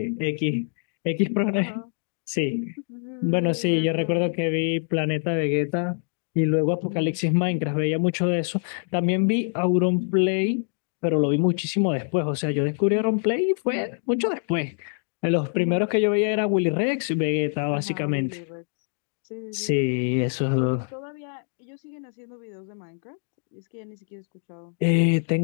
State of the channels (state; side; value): silent; right; 62 dB below the other